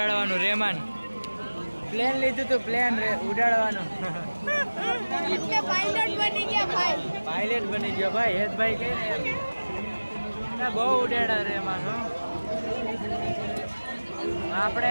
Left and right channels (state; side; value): inverted; both; correlation -1.00